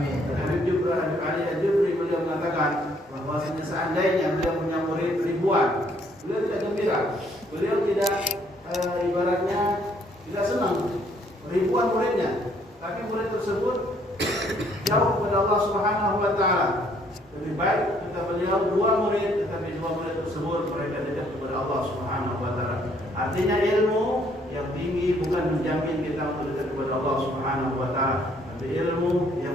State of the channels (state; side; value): normal; both; correlation 0.65